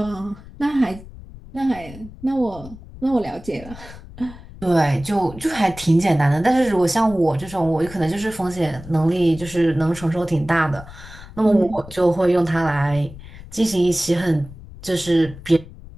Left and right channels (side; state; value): left; noise; rumble, 17 dB below the sound